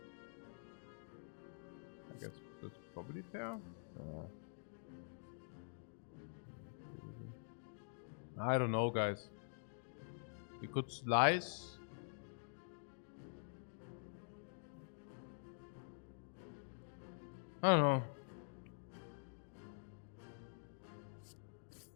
I guess that's probably fair. I don't know, guys. We could slice. I don't know.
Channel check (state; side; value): silent; right; digital silence